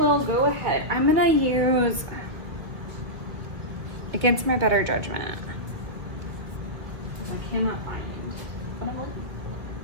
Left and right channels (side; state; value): left; late; 1.8 ms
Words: go ahead. I'm gonna use Against My Better Judgment. I cannot find it.